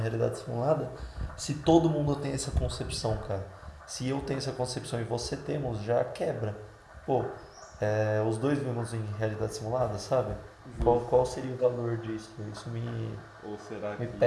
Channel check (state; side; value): identical; both; correlation 1.00